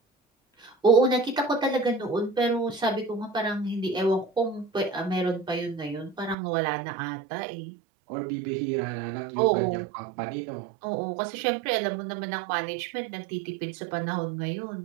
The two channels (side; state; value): left; drops out; at 6.4 s